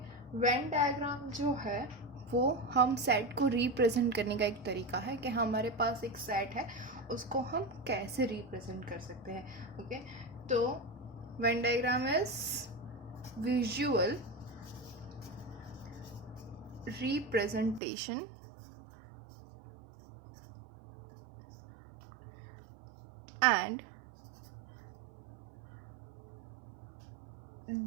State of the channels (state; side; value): drops out; left; at 17.8 s